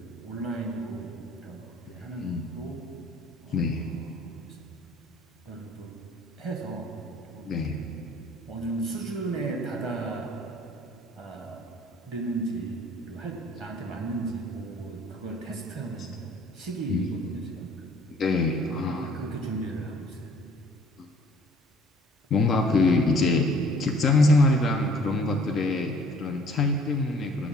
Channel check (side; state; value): both; normal; correlation 0.55